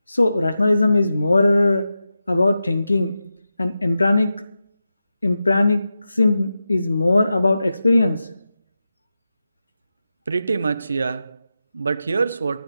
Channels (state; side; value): inverted; both; correlation -0.91